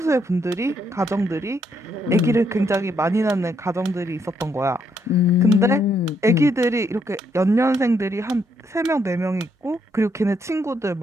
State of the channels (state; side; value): normal; both; correlation 0.75